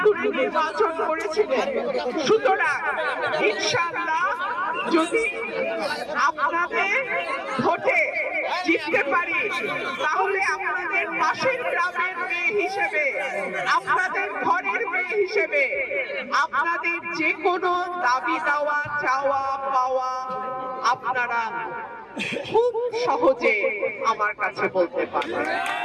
নির্বাচন করেছিলেন। সুতরাং ইনশাআল্লাহ যদি আপনাদের ভোটে জিততে পারি তাহলে আপনাদের পাশের গ্রামের মেয়ে হিসেবে, আপনাদের ঘরের মেয়ে হিসেবে আপনাদের যে কোনো দাবি দেওয়া, চাওয়া পাওয়া আপনারা খুব সহজে আমার কাছে বলতে পারেন।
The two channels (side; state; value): both; identical; correlation 1.00